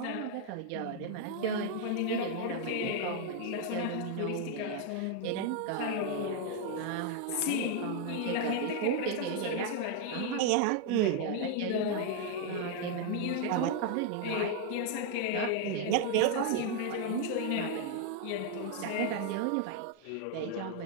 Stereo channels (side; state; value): both; different; correlation 0.01